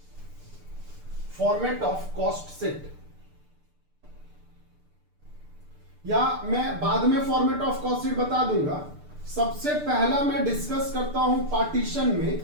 फॉर्मेट ऑफ कॉस्ट शीट, या मैं बाद में फॉर्मेट ऑफ कॉस्ट शीट बता दूंगा। सबसे पहला मैं डिस्कस करता हूं पार्टीशन में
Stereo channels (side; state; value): left; late; 6.7 ms